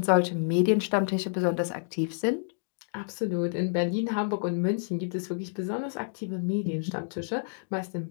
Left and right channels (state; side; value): silent; right; digital silence